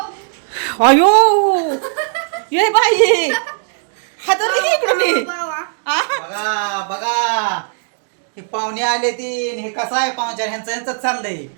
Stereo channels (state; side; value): silent; left; digital silence